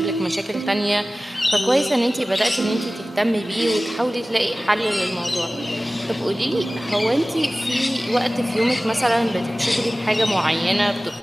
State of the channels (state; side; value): normal; both; correlation 0.97